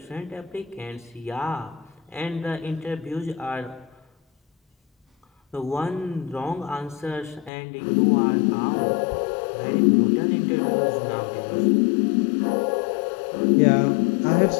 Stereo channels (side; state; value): right; drops out; at 7.5 s